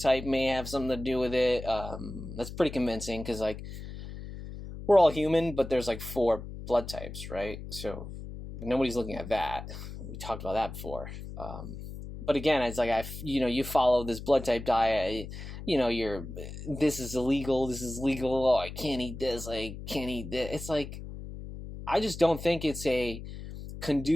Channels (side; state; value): left; noise; hum, 10 dB below the sound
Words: may have something to do with it. That's pretty convincing, because like we're all human, but there's like 4 blood types, right? So nobody's looking at that. We talked about that before. But again, it's like you follow this blood type diet. This is illegal. This is legal. Oh, I can't eat this. I can't eat this. It's like, I just don't think it's